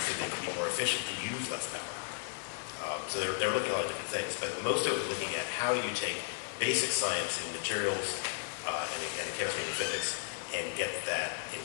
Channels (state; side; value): silent; right; digital silence